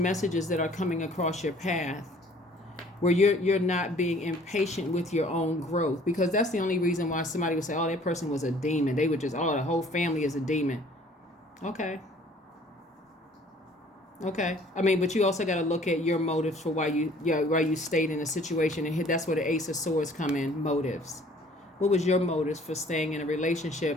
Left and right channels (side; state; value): both; normal; correlation 0.55